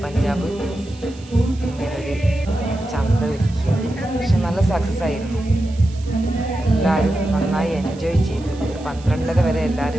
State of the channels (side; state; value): right; noise; hiss, 23 dB below the sound